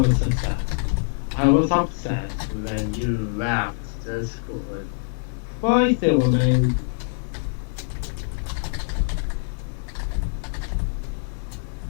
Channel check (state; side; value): silent; right; digital silence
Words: upset. I was upset when you left Discord. Why, Silverman?